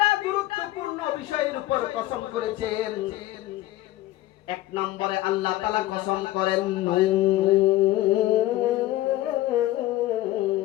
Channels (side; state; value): right; quieter; 15.8 dB